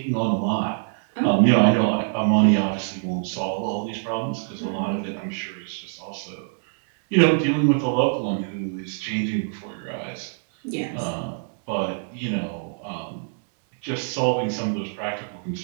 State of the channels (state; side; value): silent; left; digital silence